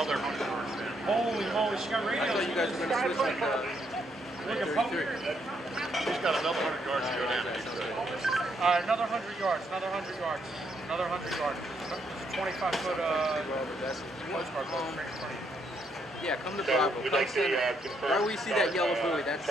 100 yards down. Holy moly, she got radio. I thought you guys were going to switch with 33. He's got another 100 yards to go down. Another 100 yards, another 100 yards, another 100 yards. 25-foot postcard boat right in front of you. Yeah, come to Bravo. Come center. Where we see that yellow buoy, that's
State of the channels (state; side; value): normal; both; correlation 0.75